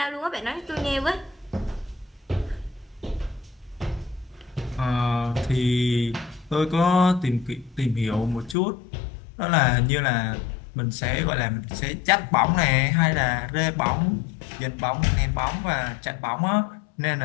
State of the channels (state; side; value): drops out; right; at 8.6 s